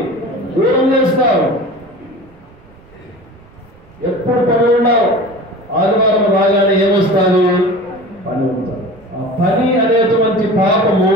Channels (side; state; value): right; noise; rumble, 26 dB below the sound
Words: దూరం చేస్తారు. ఎప్పుడు పని ఉన్నావు? ఆదివారం రాగానే ఏమొస్తుంది? పని ఉంటుంది. ఆ పని అనేటువంటి పాపము